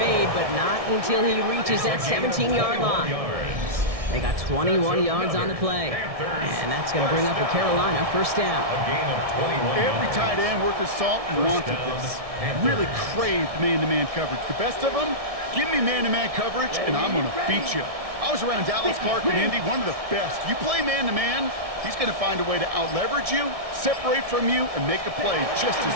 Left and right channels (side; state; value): left; late; 1.6 ms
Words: but not until he reaches that 17-yard line. They got 21 yards on the play. And that's going to bring up a Carolina 1st down. Every tight end worth his salt wanted this. Really craved man-to-man coverage. The best of them, give me man-to-man coverage, and I'm going to beat you. I was around Dallas Clark and Indy, one of the best. You play man-to-man, he's going to find a way to out-leverage you, separate from you, and make a play just as